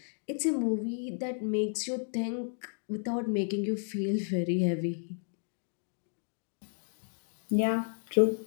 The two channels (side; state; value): right; silent; 56 dB below the other